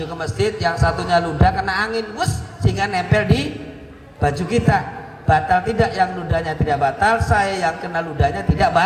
ke masjid, yang satunya ludah kena angin sehingga nempel di baju kita. Batal tidak? Yang ludahnya tidak batal, saya yang kena ludahnya tidak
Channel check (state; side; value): identical; both; correlation 1.00